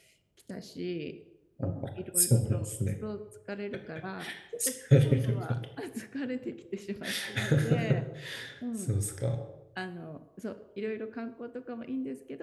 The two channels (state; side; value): identical; both; correlation 1.00